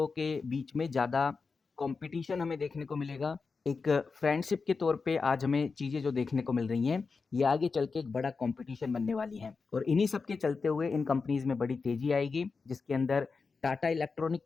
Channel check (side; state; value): right; quieter; 4.6 dB